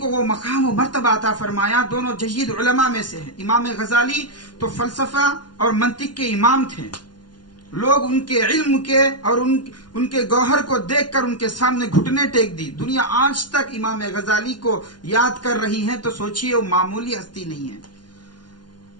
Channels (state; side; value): late; right; 0.70 ms